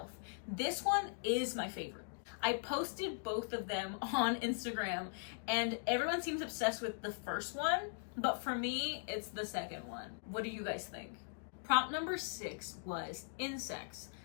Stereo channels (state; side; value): silent; right; digital silence